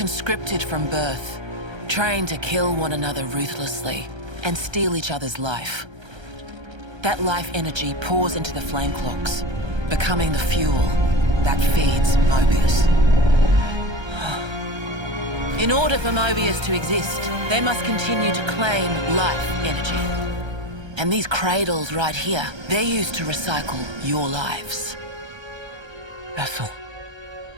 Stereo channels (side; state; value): left; late; 1.3 ms